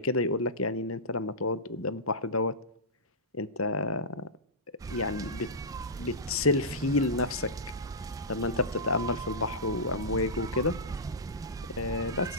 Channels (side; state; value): both; normal; correlation -0.15